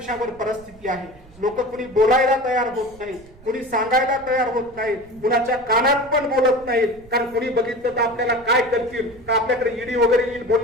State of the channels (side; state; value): right; noise; rumble, 23 dB below the sound